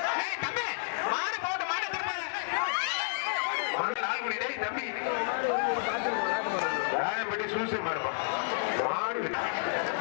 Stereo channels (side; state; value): right; silent; digital silence